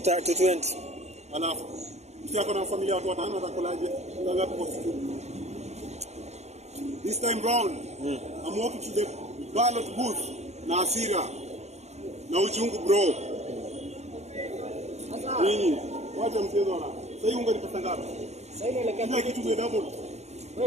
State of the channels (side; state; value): left; late; 0.32 ms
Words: Alafu msiako na familia watu watano atakulaje? Unga ngapi kwa siku? This time round, I'm walking to the ballot booth na hasira na uchungu bro. Nini? Wacha mchezo na. Sasa unga ni pesa ngapi? Sasa inaelekea kila kitu ni double.